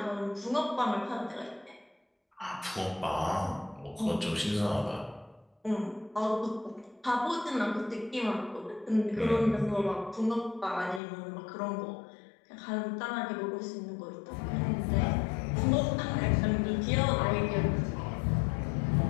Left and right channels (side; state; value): right; drops out; at 11.0 s